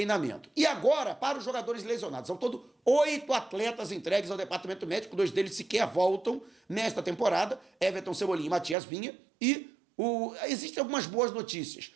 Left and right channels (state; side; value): drops out; left; at 8.8 s